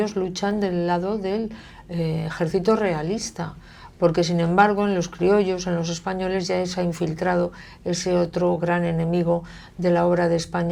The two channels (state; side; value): identical; both; correlation 1.00